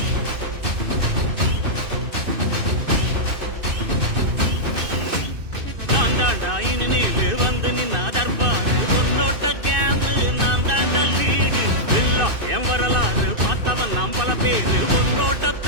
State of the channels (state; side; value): late; left; 2.6 ms